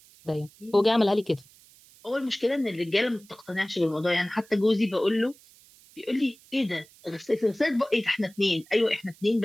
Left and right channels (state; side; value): noise; right; hiss, 26 dB below the sound